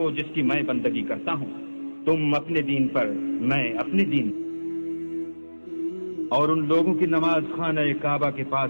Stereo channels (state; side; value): inverted; both; correlation -1.00